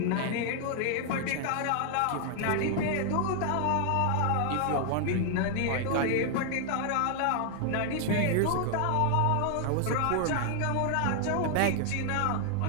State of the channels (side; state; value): both; different; correlation 0.00